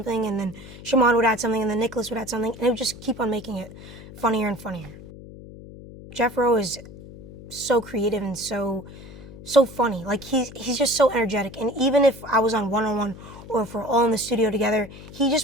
and then Shamon would add something, and then Nicolas would add something, and it would just keep on making it funnier and funnier. Jeff Rowe is so creative and so funny. Like, he's just so energetic. And even if I was on one-on-one or if we're all in the studio together, he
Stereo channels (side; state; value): left; noise; hum, 16 dB below the sound